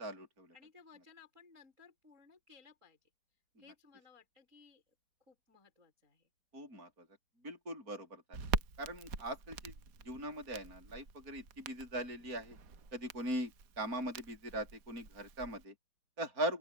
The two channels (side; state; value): left; late; 4.2 ms